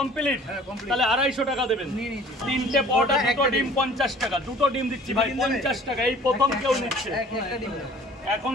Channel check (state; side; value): normal; both; correlation 0.50